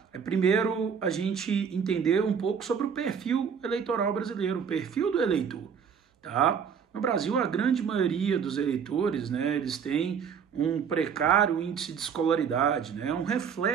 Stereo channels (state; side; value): quieter; left; 7.0 dB